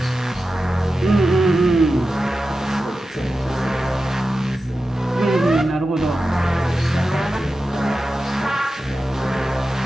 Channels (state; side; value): normal; both; correlation 0.92